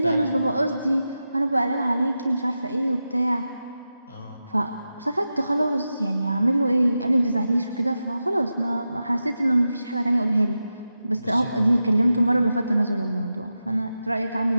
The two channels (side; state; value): both; inverted; correlation -0.91